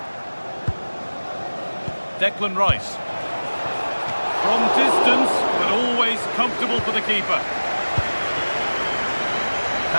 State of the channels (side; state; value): both; inverted; correlation -1.00